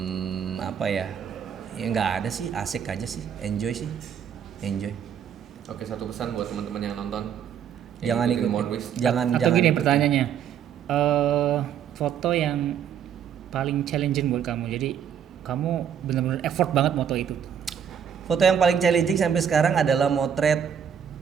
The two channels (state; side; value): quieter; left; 8.3 dB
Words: Apa ya? Ya nggak ada sih. Asik aja sih. Enjoy. Oke, satu pesan buat teman-teman yang nonton. Jangan ikutin. Monwis. Atau gini ikutin. pertanyaannya, foto yang paling challenging buat kamu. Jadi kamu benar-benar effort banget moto itu. Foto yang paling challenging sampai sekarang adalah motret